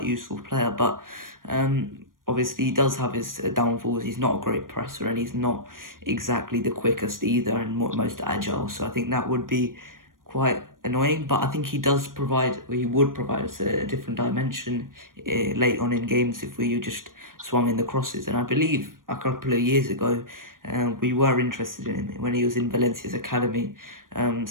useful player, but obviously he does have his downfalls. He's not a great presser, and he's not exactly the quickest either, and most agile. So I think that would be quite annoying, but I think he would provide us a different dimension late on in games if we just swung in the crosses. And I believe a couple of years ago, we were interested in him when he was in Valencia's academy.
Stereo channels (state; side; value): late; left; 0.90 ms